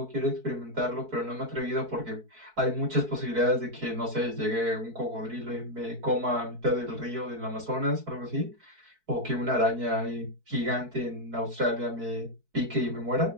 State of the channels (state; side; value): late; left; 4.6 ms